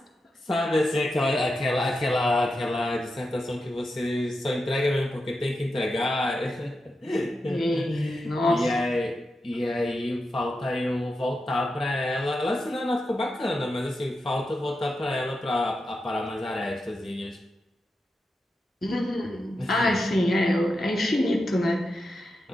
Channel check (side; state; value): both; normal; correlation 0.88